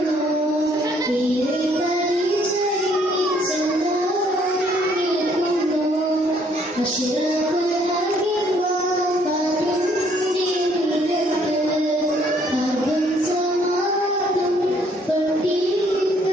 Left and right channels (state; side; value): normal; both; correlation 0.65